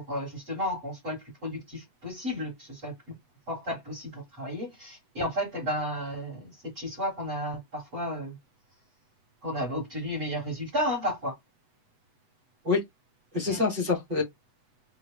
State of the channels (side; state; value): left; late; 8.0 ms